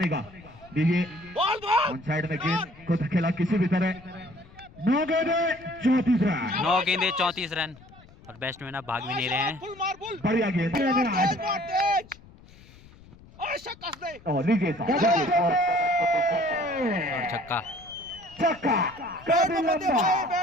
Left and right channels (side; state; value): left; noise; rumble, 23 dB below the sound